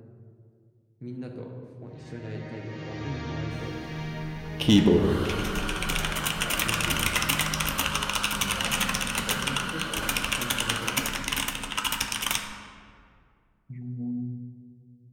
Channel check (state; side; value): identical; both; correlation 1.00